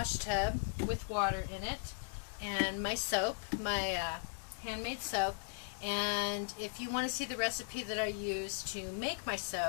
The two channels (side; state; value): right; silent; digital silence